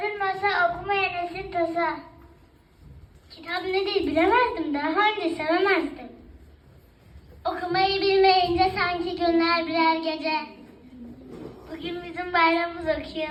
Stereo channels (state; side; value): identical; both; correlation 1.00